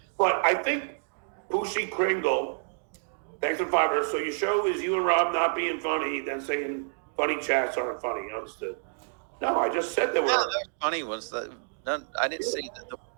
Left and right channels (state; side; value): silent; left; digital silence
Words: But I think Poochie Kringle, thanks for fiber. So your show is you and Rob not being funny, then saying funny chats aren't funny. Understood? No, I just said they were. Yeah, the funny ones. I didn't say that they were